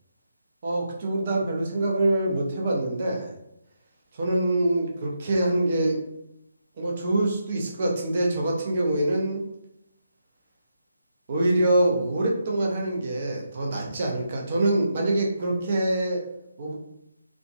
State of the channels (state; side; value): inverted; both; correlation -0.83